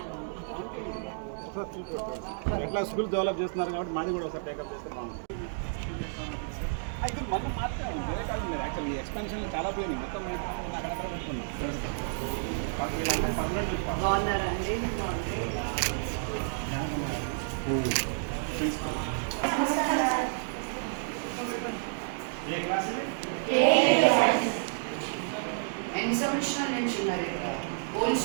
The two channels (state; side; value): silent; left; digital silence